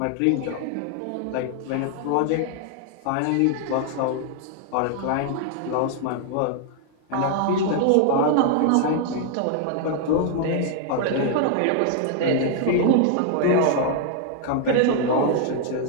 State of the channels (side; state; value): both; different; correlation 0.00